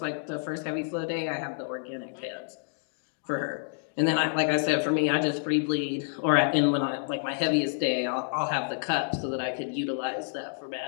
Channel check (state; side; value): silent; right; digital silence